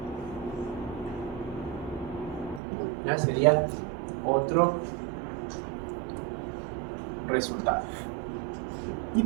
Ya sería otro resultado. Y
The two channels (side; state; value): left; drops out; at 2.6 s